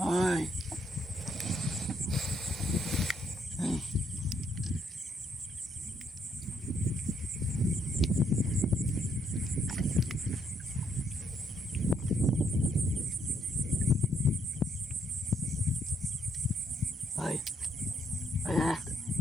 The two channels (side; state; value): both; normal; correlation 0.72